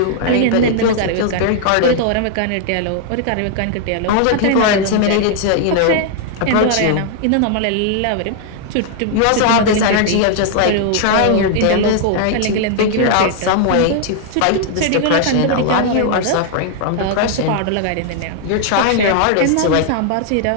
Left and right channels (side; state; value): both; different; correlation 0.00